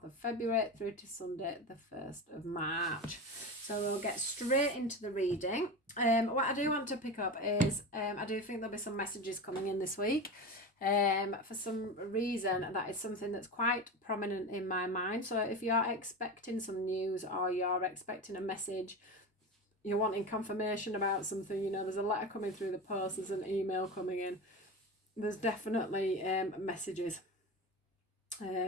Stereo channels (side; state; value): both; normal; correlation 0.25